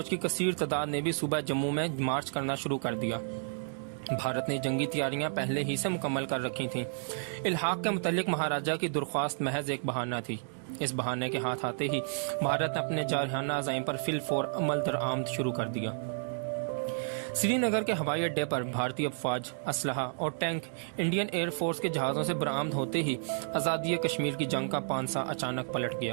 کی کثیر تعداد نے بھی صبح جموں میں مارچ کرنا شروع کر دیا. بھارت نے جنگی تیاریاں پہلے ہی سے مکمل کر رکھی تھیں. الحاق کے متعلق مہاراجہ کی درخواست محض ایک بہانہ تھی. اس بہانے کے ہاتھ آتے ہی بھارت نے اپنے جارحانہ عزائم پر فی الفور عمل درآمد شروع کر دیا. سری نگر کے ہوائی اڈے پر بھارتی افواج، اسلحہ اور ٹینک انڈین ایئر فورس کے جہازوں سے برآمد ہوتے ہی آزادی کشمیر کی جنگ کا پانسا اچانک پلٹ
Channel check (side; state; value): left; silent; digital silence